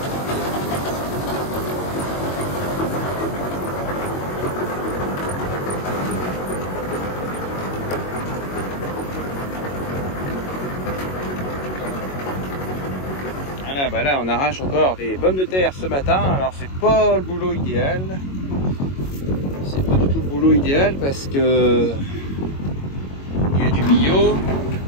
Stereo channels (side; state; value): right; late; 22 ms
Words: Voilà, bah là on arrache encore des pommes de terre ce matin. Alors c'est pas le boulot idéal. C'est pas du tout le boulot idéal parce que il y a du bio,